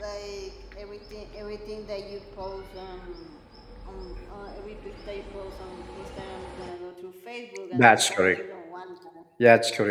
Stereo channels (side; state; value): both; identical; correlation 1.00